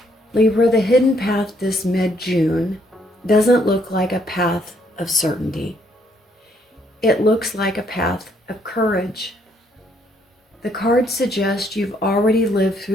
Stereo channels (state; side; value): normal; both; correlation 0.70